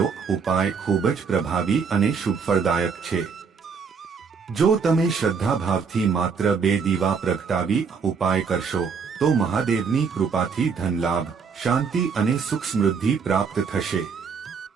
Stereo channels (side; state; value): left; quieter; 5.8 dB